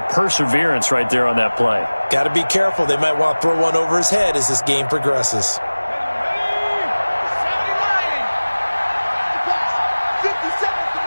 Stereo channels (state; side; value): inverted; both; correlation -1.00